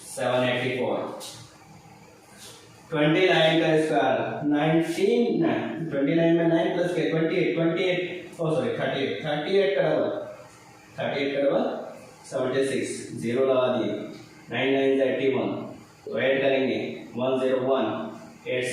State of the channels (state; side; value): identical; both; correlation 1.00